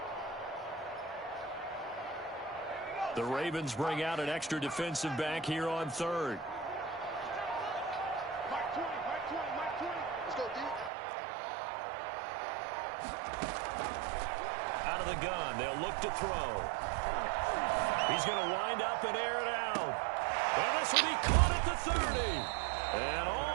The Ravens bring out an extra defensive back here on third. Out of the gun, they'll look to throw. He's going to wind up and air it out. And this will be caught at the 30. And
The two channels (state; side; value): drops out; left; at 10.9 s